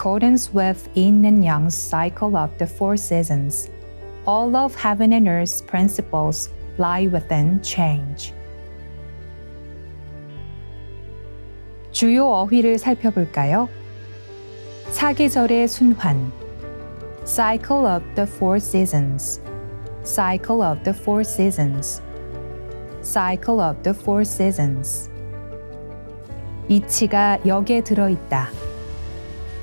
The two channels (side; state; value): both; inverted; correlation -1.00